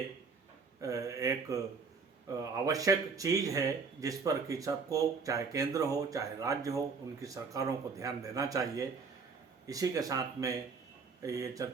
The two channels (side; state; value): left; quieter; 5.0 dB